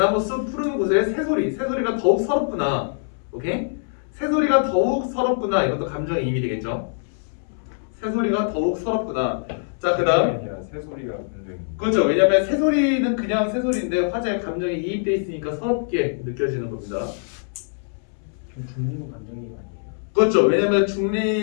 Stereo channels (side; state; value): right; silent; 63 dB below the other